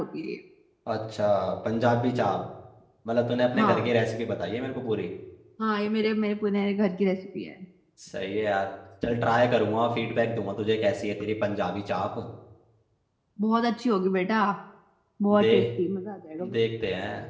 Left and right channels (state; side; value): identical; both; correlation 1.00